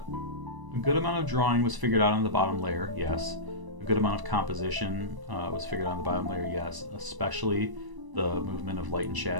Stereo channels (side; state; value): left; late; 1.0 ms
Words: good amount of drawing was figured out on the bottom layer, yes. A good amount of composition was figured out on the bottom layer, yes. Especially the movement of light and